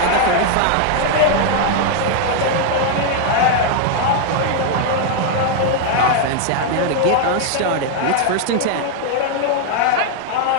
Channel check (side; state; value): both; different; correlation 0.00